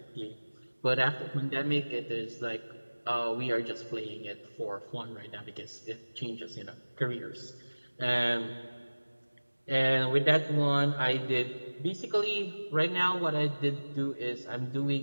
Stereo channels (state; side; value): inverted; both; correlation -1.00